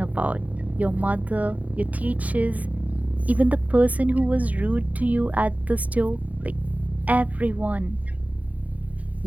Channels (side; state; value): left; late; 0.072 ms